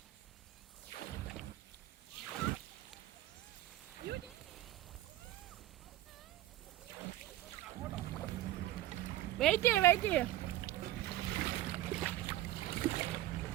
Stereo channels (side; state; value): left; quieter; 14.7 dB